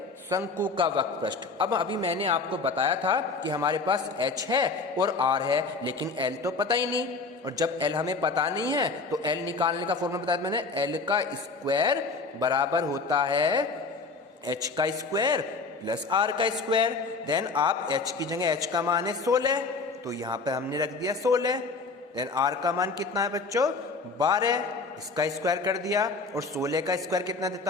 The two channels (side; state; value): right; quieter; 4.1 dB